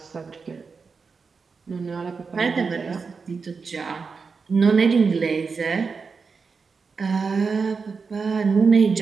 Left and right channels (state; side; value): quieter; left; 5.0 dB